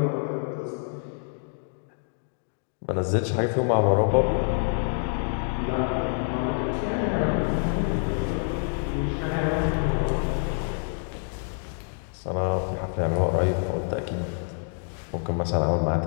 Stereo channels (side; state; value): right; silent; 56 dB below the other